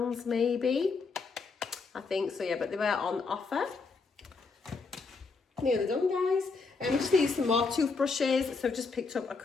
maybe, I think so, yeah, but they were on offer. Nearly done, guys. We just need some more toothbrushes, so I've just picked up a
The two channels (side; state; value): right; quieter; 4.4 dB